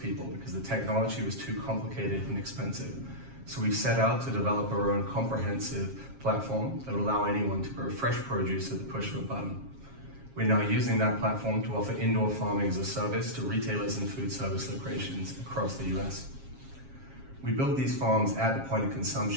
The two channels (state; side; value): late; left; 7.4 ms